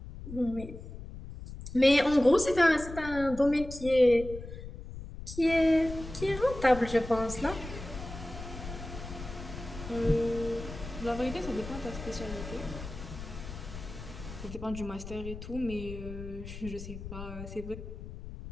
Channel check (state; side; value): noise; left; rumble, 11 dB below the sound